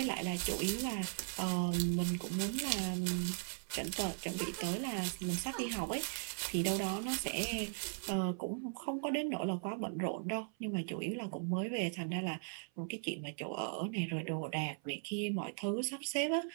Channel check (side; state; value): left; silent; 52 dB below the other